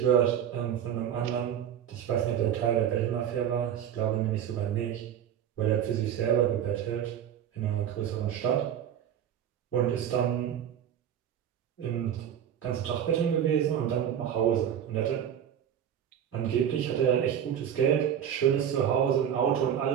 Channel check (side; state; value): left; quieter; 9.5 dB